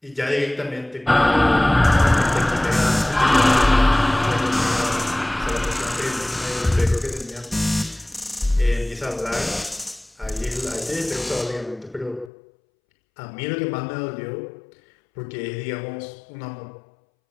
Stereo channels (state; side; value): drops out; right; at 12.3 s